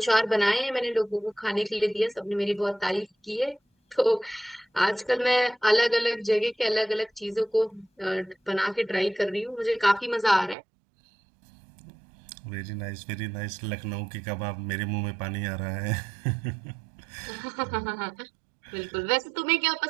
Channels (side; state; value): left; drops out; at 10.6 s